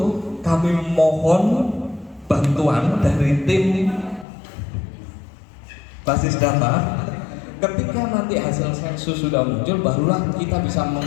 kami mohon bantuan dari tim basis data. Ketika nanti hasil sensus sudah muncul, barulah kita bisa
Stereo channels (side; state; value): right; drops out; at 4.2 s